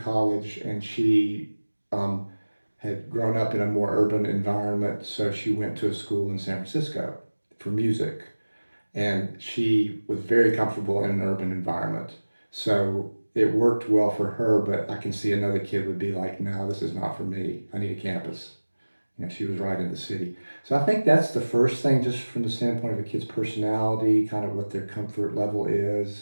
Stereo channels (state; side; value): inverted; both; correlation -1.00